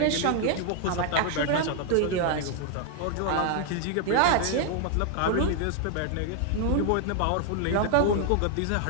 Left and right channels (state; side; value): different; both; correlation 0.00